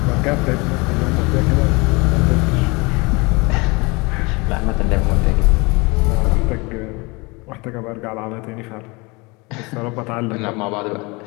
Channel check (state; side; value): quieter; right; 26.5 dB